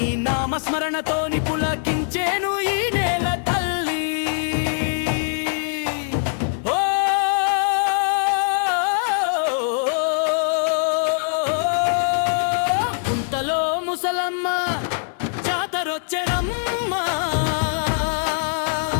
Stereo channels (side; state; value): right; silent; digital silence